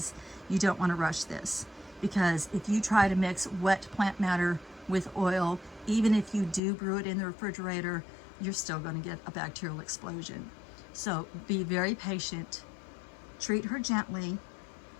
you don't want to rush this. Because if you try to mix wet plant matter with oil, even if you do brew it in the refrigerator, you're still going to get a bacterial explosion. So be very patient, treat her gently,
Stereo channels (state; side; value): drops out; right; at 6.6 s